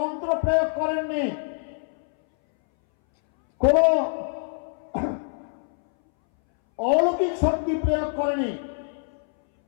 প্রয়োগ করেননি, কোন অলৌকিক শক্তি প্রয়োগ করেনি,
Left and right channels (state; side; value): silent; right; 60 dB below the other